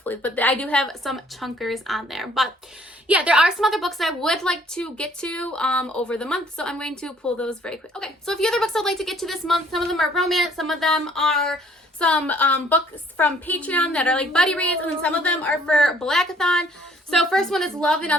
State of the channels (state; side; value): normal; both; correlation 0.60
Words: But I do have some chunkers on there. But yeah, there are some other books that I would like to get to over the month, so I'm going to pull those very quick. Okay, so a few other books I'd like to get to this month. Some of them are romance, some of them are some books from Patreon that are like buddy reads, and then some of them are for Blackathon. So first one is Love and